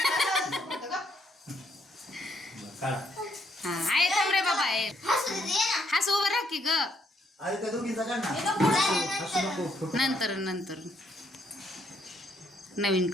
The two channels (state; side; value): normal; both; correlation 0.72